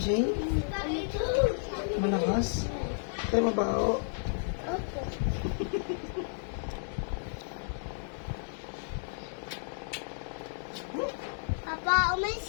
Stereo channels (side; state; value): right; silent; 56 dB below the other